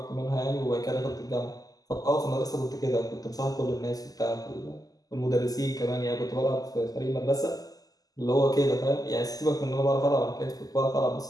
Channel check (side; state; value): right; late; 0.17 ms